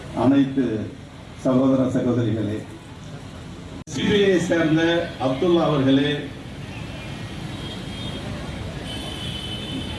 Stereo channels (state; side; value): identical; both; correlation 1.00